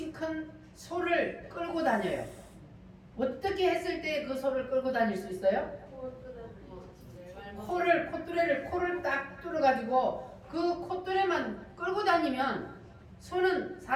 큰 소를 끌고 다녀요. 어떻게 했을 때 그 소를 끌고 다닐 수 있어요? 코를 딱 뚫어가지고 그 콧뚜레만 끌고 다니면 소는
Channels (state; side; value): identical; both; correlation 1.00